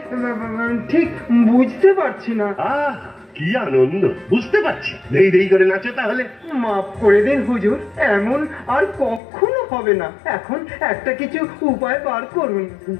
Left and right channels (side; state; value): right; drops out; at 9.2 s